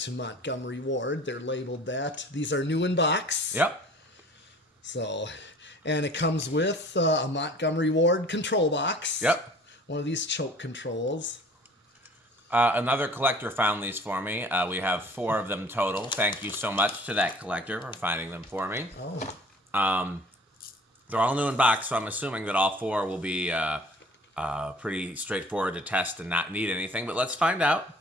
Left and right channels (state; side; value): normal; both; correlation 0.49